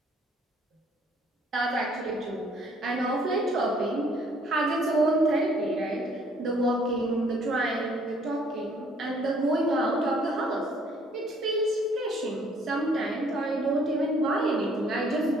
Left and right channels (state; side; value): normal; both; correlation 0.61